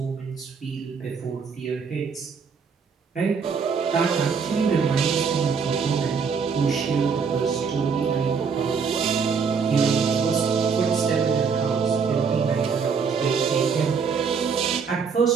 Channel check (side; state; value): left; quieter; 5.8 dB